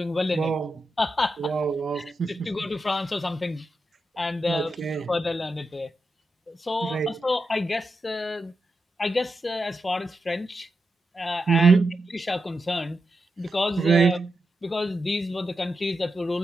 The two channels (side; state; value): both; normal; correlation 0.87